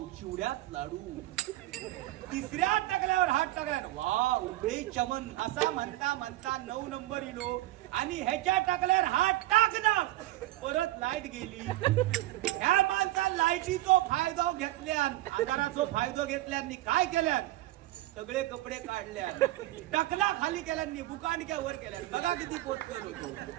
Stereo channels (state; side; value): quieter; left; 16.7 dB